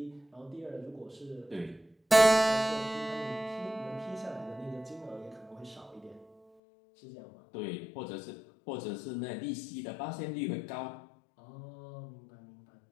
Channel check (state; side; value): drops out; right; at 6.4 s